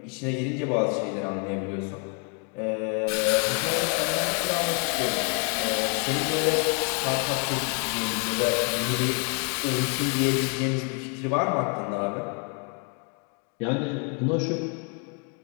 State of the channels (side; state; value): right; quieter; 39.2 dB